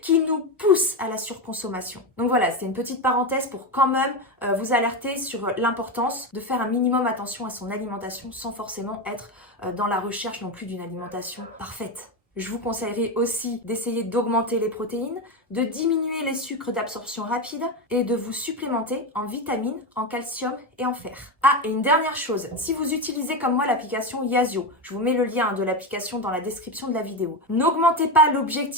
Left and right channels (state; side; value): normal; both; correlation 0.15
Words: qui nous poussent à la surconsommation. Donc voilà, c'était une petite parenthèse pour quand même vous alerter sur l'importance de faire un minimum attention à son alimentation sans forcément être dans la recherche non plus d'une alimentation parfaite. Je vous conseillerais aussi d'essayer d'augmenter les protéines, de diminuer les sucres d'absorption rapide et de vous supplémenter en vitamines, en calcium et en fer. Ah, et une dernière chose, si vous utilisez comme moi l'application Yazio, je vous mets le lien de l'application dans la description de la vidéo, n'augmentez pas